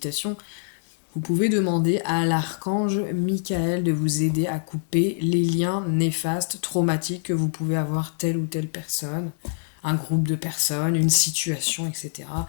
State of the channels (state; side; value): silent; right; digital silence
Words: Vous pouvez demander à l'archange Michael de vous aider à couper les liens néfastes, traumatiques que vous pouvez avoir telle ou telle personne, un groupe de personnes, une situation, etc.